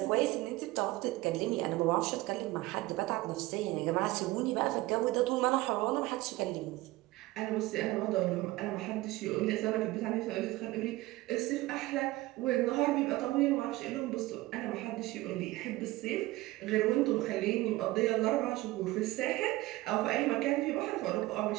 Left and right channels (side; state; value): left; quieter; 18.8 dB